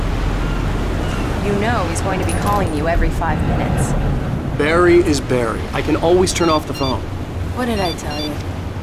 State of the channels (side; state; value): both; identical; correlation 1.00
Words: You know he's going to be calling you every 5 minutes. Barry is Barry. I can always turn off the phone. What did I tell you?